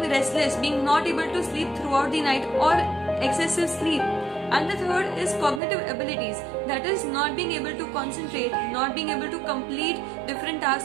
restless, being not able to sleep throughout the night or excessive sleep. And the third is cognitive abilities. That is not being able to concentrate, not being able to complete different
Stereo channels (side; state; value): left; drops out; at 5.6 s